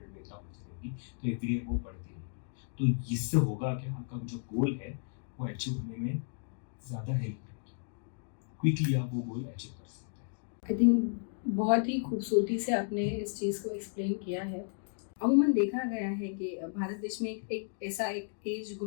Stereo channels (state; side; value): silent; right; digital silence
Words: लेता हो जाएगी। तो एवरी ईयर वो बढ़ती रहेगी। तो इससे होगा क्या, आपका जो गोल है वो अचीव होने में ज़्यादा हेल्प करेगी, क्विकली आप वो गोल अचीव कर सकते हैं। आई थिंक बहुत ही खूबसूरती से आपने इस चीज़ को एक्सप्लेन किया है। अमूमन देखा गया है कि भारत देश में एक ऐसा एक एज